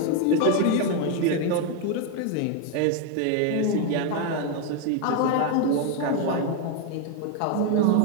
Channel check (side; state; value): both; different; correlation 0.01